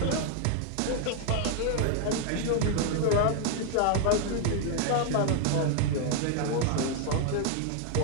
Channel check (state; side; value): different; both; correlation 0.00